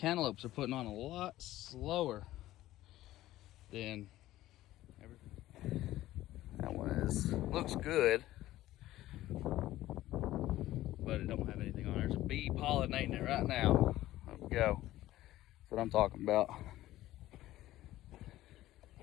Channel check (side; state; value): right; quieter; 15.2 dB